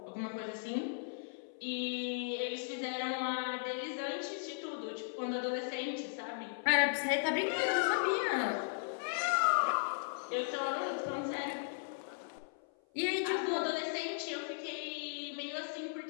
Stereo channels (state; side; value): silent; right; 53 dB below the other